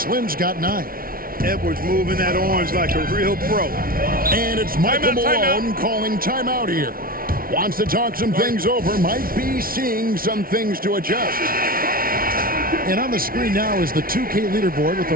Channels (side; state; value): left; late; 0.43 ms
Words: got 9. Edwards moving that orange like a real pro. And it's Michael Malone calling timeout here. Wants to talk some things over. Might be seeing some things to adjust. And on the screen now is the 2K leaderboard with a